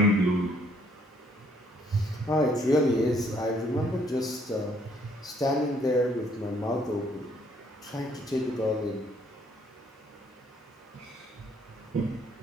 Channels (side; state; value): both; normal; correlation 0.65